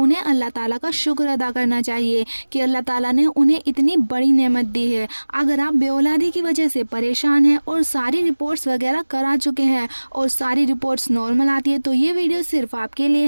अल्लाह ताला का शुक्र अदा करना चाहिए कि अल्लाह ताला ने उन्हें इतनी बड़ी नेमत दी है। अगर आप बेऔलादी की वजह से परेशान हैं और सारी रिपोर्ट्स वगैरह करा चुके हैं और सारी रिपोर्ट्स नॉर्मल आती है तो ये वीडियो सिर्फ आपके लिए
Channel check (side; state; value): both; inverted; correlation -1.00